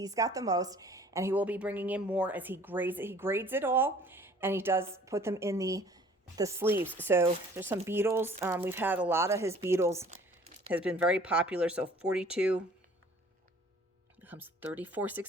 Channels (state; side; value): normal; both; correlation 0.52